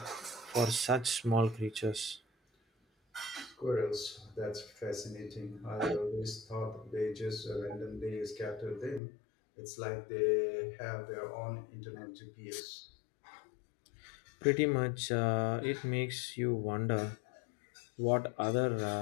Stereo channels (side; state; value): right; drops out; at 9.0 s